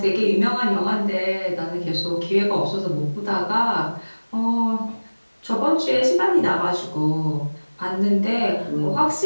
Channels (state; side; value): inverted; both; correlation -1.00